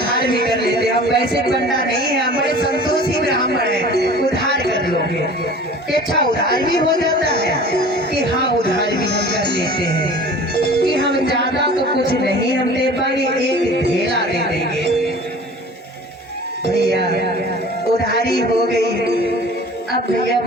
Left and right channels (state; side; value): normal; both; correlation 0.43